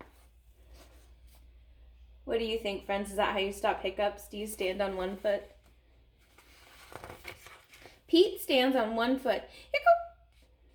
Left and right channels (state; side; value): identical; both; correlation 1.00